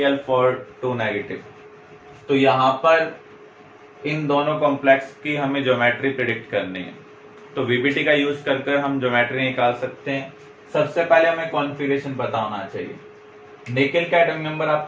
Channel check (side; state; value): both; identical; correlation 1.00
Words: for 2 negative। तो यहाँ पर इन दोनों कॉम्प्लेक्स की हमें ज्योमेट्री प्रिडिक्ट करनी है, तो VBT का यूज कर हम ज्योमेट्री निकाल सकते हैं। सबसे पहले हमें कॉन्फ़िगरेशन पता होना चाहिए। निकेल का एटॉमिक नंबर